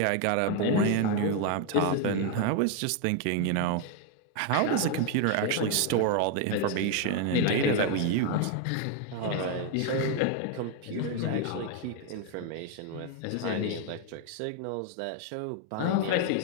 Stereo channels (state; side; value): different; both; correlation 0.01